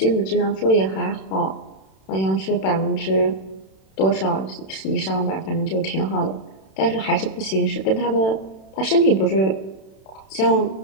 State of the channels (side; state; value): right; late; 31 ms